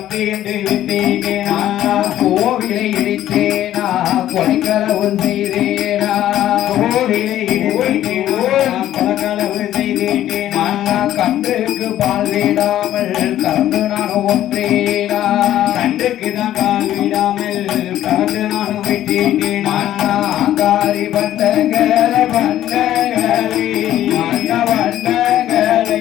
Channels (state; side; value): quieter; right; 12.6 dB